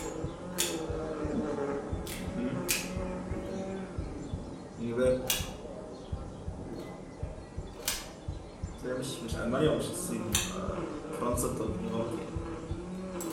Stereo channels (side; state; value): both; identical; correlation 1.00